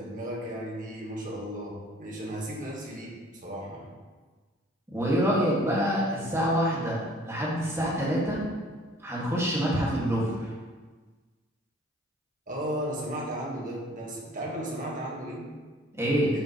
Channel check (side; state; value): both; normal; correlation 0.54